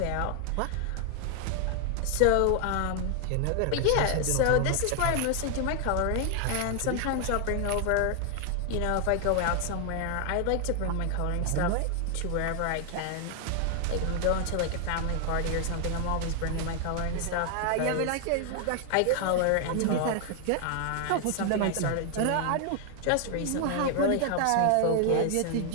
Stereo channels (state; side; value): different; both; correlation 0.00